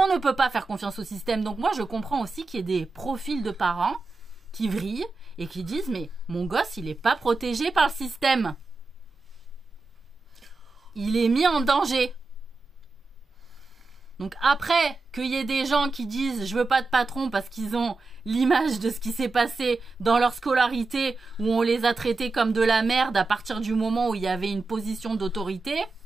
ne peut pas faire confiance au système. Donc moi je comprends aussi qu'il y ait des profils de parents qui vrillent et qui disent, mais mon gosse, il n'est pas protégé par le système. Il est mis en danger. Donc après, qu'il y ait des gens qui disent je veux pas de patron parce qu'ils ont l'image de ce qui s'est passé dans leur scolarité où on les a traités comme de la merde à partir du moment où il y avait une position d'autorité,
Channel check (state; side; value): quieter; left; 3.7 dB